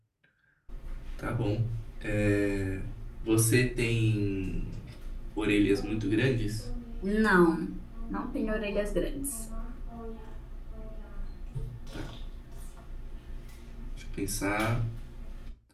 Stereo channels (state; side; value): identical; both; correlation 1.00